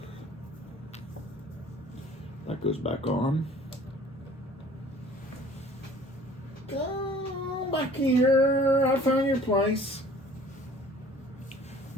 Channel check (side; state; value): both; normal; correlation 0.50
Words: That goes back on. Go back here. I found your place.